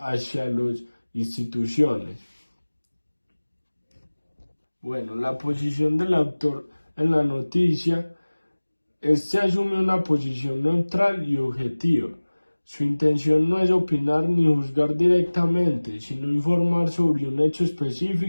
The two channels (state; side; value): inverted; both; correlation -1.00